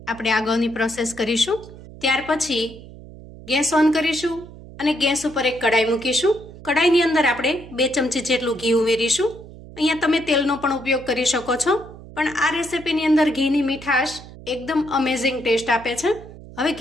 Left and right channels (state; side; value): noise; right; hum, 17 dB below the sound